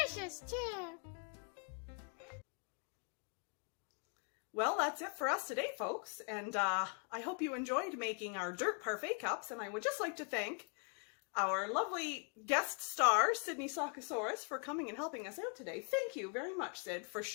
delicious too. Well, that's it for us today, folks. And I hope you enjoyed making our Dirt Parfait Cups. And I would just like to thank our lovely guest star, Sydney Sockosaurus, for coming and helping us out today. Thank you very much, Sid, for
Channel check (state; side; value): quieter; right; 39.7 dB